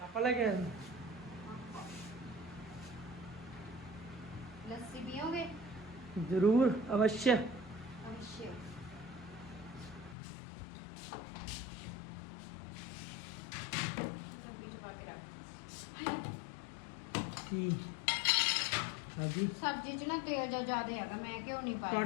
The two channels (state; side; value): drops out; right; at 10.2 s